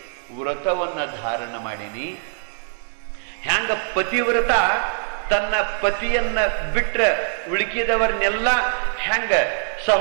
ವ್ರತವನ್ನ ಧಾರಣ ಮಾಡೀನಿ. ಹೆಂಗ ಪತಿವ್ರತ ತನ್ನ ಪತಿಯನ್ನ ಬಿಟ್ರೆ ಉಳುಕಿದವರನ್ನೆಲ್ಲ ಹೆಂಗ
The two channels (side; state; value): left; silent; 62 dB below the other